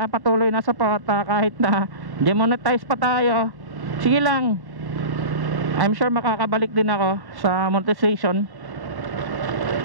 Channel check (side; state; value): left; late; 1.1 ms